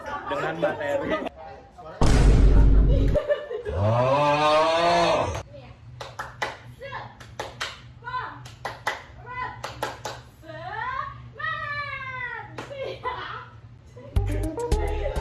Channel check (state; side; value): identical; both; correlation 1.00